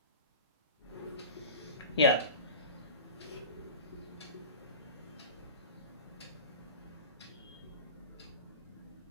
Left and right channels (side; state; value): both; inverted; correlation -0.33